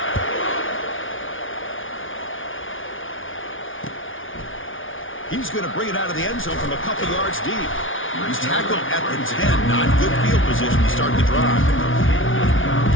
He's going to bring it out of the end zone from a couple yards deep. He's tackled at the 10. Not good field position to start the drive.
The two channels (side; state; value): right; late; 0.57 ms